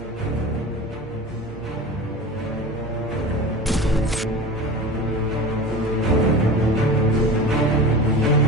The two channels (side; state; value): both; normal; correlation 0.33